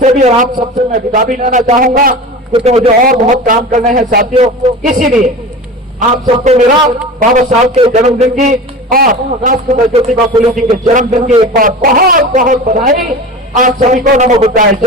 भी और आप सबसे मैं विदा भी लेना चाहूंगा, क्योंकि मुझे और बहुत काम करने हैं साथियों। इसीलिए आप सबको मेरा बाबा साहब के जन्मदिन की और राष्ट्रपिता ज्योतिबा फुले जी के जन्मदिन की एक बार बहुत बहुत बधाई। आप सभी को नमो बुद्धाय,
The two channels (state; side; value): normal; both; correlation 0.32